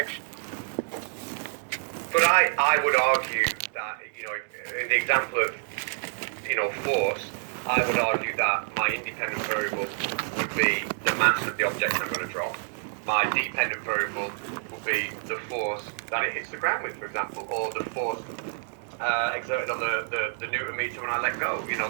But I would argue that, in the example of, force, I would argue that my independent variable would be the mass of the object I'm going to drop. My dependent variable would be the force that it hits the ground with, for example, or the force exerted on the Newton meter when I let go.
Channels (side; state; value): left; silent; digital silence